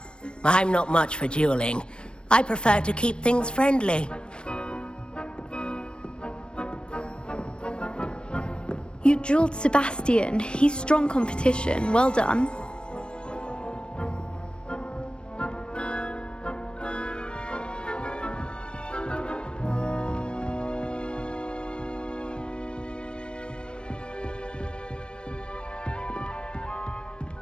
I'm not much for dueling. I prefer to keep things friendly. You dueled Sebastian. He's strong competition. Well done.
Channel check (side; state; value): right; late; 0.055 ms